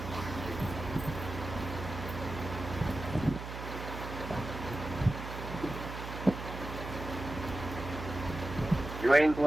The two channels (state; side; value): noise; right; hum, 8 dB below the sound